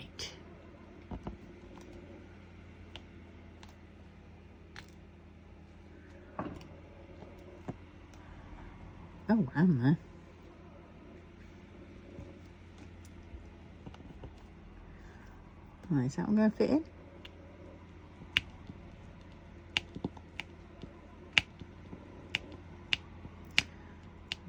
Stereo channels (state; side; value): identical; both; correlation 1.00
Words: Oh, am there? Right, is that one going to fit in?